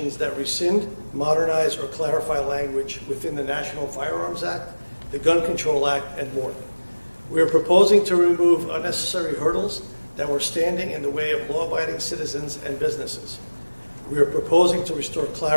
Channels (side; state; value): both; inverted; correlation -1.00